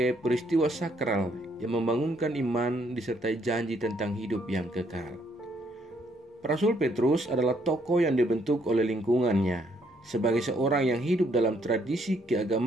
peristiwa sakral yang membangunkan iman disertai janji tentang hidup yang kekal. Rasul Petrus adalah tokoh yang dibentuk oleh lingkungannya. Sebagai seorang yang hidup dalam tradisi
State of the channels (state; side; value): normal; both; correlation 0.69